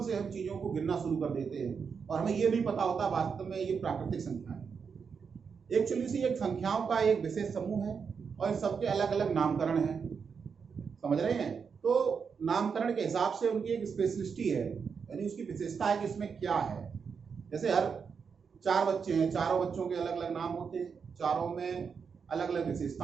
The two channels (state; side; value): quieter; left; 6.1 dB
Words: से हम चीजों को गिनना शुरू कर देते हैं और हमें ये नहीं पता होता वास्तव में ये प्राकृतिक संख्या है। एक्चुअली से एक संख्याओं का एक विशेष समूह है और सबके अलग अलग नामकरण हैं, समझ रहे हैं? तो नामकरण के हिसाब से उनकी एक स्पेशलिस्टी है, यानी उसकी विशेषता है कि इसमें क्या है। जैसे हर 4 बच्चे हैं, चारों बच्चों के अलग अलग नाम होते हैं, चारों में अलग अलग